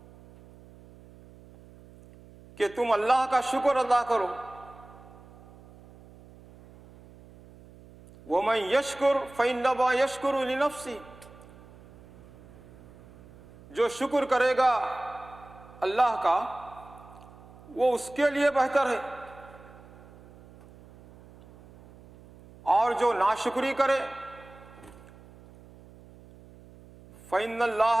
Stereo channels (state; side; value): noise; right; hum, 22 dB below the sound